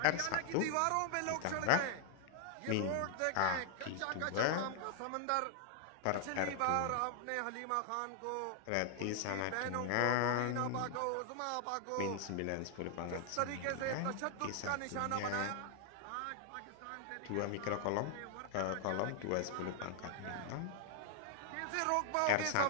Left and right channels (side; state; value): both; different; correlation 0.00